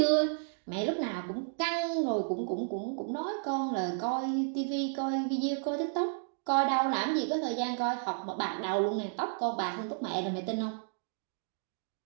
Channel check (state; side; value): silent; left; digital silence